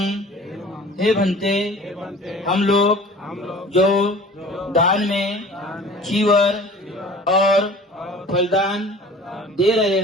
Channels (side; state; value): both; normal; correlation 0.44